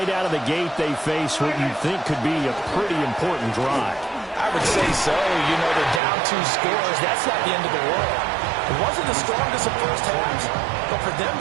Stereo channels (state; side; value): drops out; left; at 6.0 s